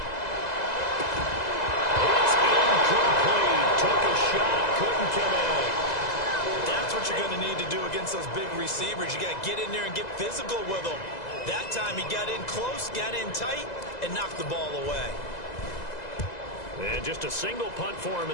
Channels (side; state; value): right; late; 2.0 ms